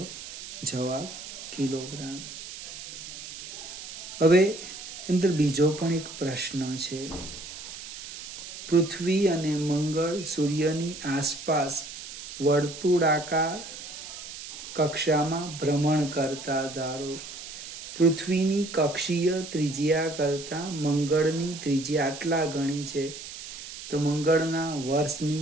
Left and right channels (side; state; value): right; noise; hiss, 11 dB below the sound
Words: જવાબ કિલોગ્રામ. હવે અંદર બીજો પણ એક પ્રશ્ન છે. પૃથ્વી અને મંગળ સૂર્યની આસપાસ વર્તુળાકાર કક્ષામાં ભ્રમણ કરતા ધારો. પૃથ્વીની કક્ષીય ત્રિજ્યા કરતાં મંગળની ત્રિજ્યા આટલા ગણી છે, તો મંગળના